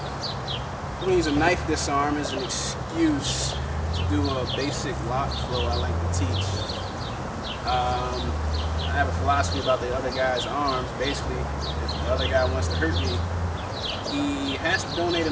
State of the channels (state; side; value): identical; both; correlation 1.00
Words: We're going to use a knife disarm as an excuse to do a basic lock flow I like to teach. I have a philosophy about the other guy's arms. Basically, if the other guy wants to hurt me, he has to donate